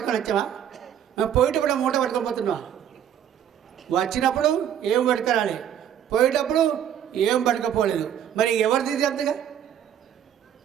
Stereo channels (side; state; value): left; quieter; 9.7 dB